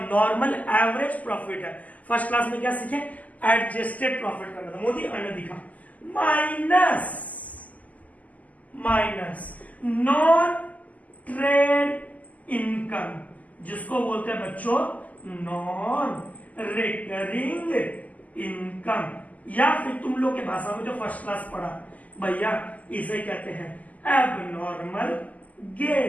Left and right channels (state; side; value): late; right; 0.076 ms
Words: नॉर्मल एवरेज प्रॉफिट है। फर्स्ट क्लास में क्या सीखे, एडजस्टेड प्रॉफिट करना था, मोदी अन्य दिखा, माइनस नॉन ट्रेड इनकम, जिसको बोलते हैं बच्चों नॉन रिकरिंग इनकम, या फिर तुम लोग के भाषा में जो फर्स्ट क्लास पढ़ा भैया इसे कहते हैं एबनॉर्मल